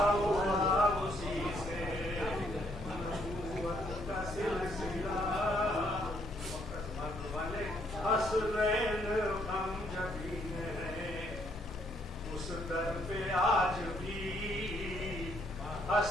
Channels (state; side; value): normal; both; correlation 0.70